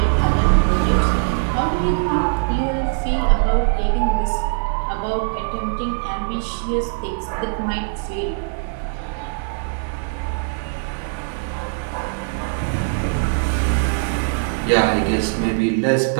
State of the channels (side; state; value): left; silent; digital silence